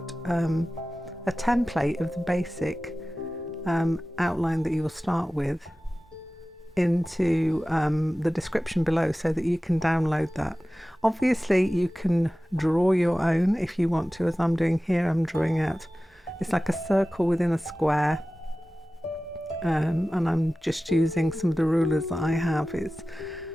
a template of the basic outline that you will start with into the description below so that you can download that. Obviously you can draw your own if you want to, as I'm doing here. I'm drawing out, it's like a circle within a square, and I'm just using some of the rulers that I have. It's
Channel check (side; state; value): both; normal; correlation 0.96